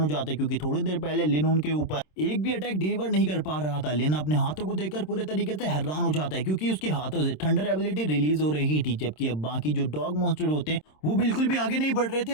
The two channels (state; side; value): late; right; 26 ms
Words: हो जाता है क्योंकि थोड़ी देर पहले लिन उनके ऊपर एक भी अटैक डिलीवर नहीं कर पा रहा था। लिन अपने हाथों को देखकर पूरे तरीके से हैरान हो जाता है क्योंकि उसके हाथों से थंडर एबिलिटी रिलीज हो रही थी, जबकि अब बाकी जो डॉग मॉन्स्टर होते हैं वो बिल्कुल भी आगे नहीं बढ़ रहे थे